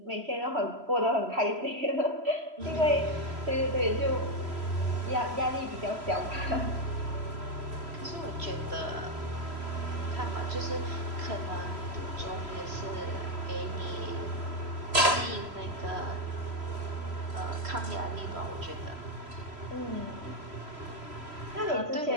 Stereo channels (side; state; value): left; late; 3.0 ms